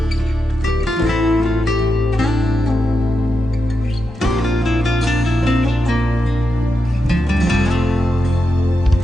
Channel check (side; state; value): both; normal; correlation 0.87